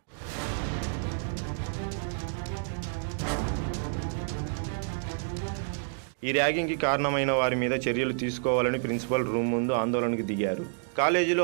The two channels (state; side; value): silent; left; 58 dB below the other